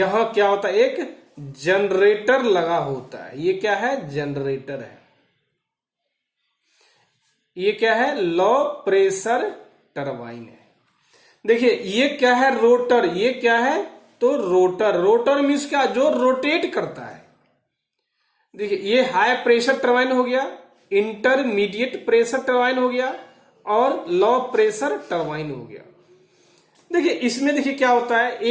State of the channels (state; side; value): identical; both; correlation 1.00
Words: क्या होता है, एक जनरेटर लगा होता है, ये क्या है, जनरेटर है। ये क्या है, लो प्रेशर टरबाइन है। देखिए ये क्या है, रोटर, ये क्या है, तो रोटर, रोटर मीन्स क्या, जो रोटेट करता है। देखिए ये हाई प्रेशर टरबाइन हो गया, इंटरमीडिएट प्रेशर टरबाइन हो गया, और लो प्रेशर टरबाइन हो गया। देखिए इसमें देखिए क्या होता है,